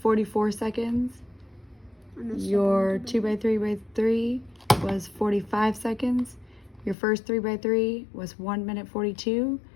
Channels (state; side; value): drops out; right; at 7.0 s